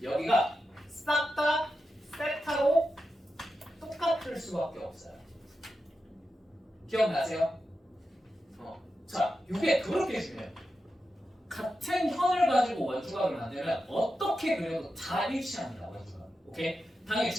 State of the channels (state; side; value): normal; both; correlation 0.90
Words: 여기가 싹 다 세타로 똑같을 수밖에 없어요. 기억나세요? 자, 이게 그렇게 중요해요. 같은 현을 가지고 원주각을 만들면 어떻게 그려도 다 일치합니다. 원주각. 오케이? 당연히